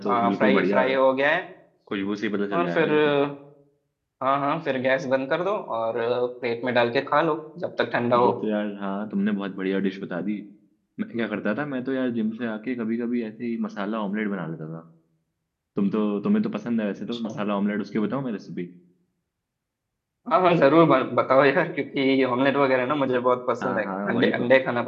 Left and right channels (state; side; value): identical; both; correlation 1.00